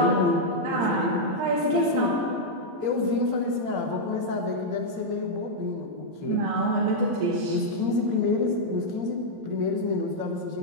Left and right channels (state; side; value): late; left; 18 ms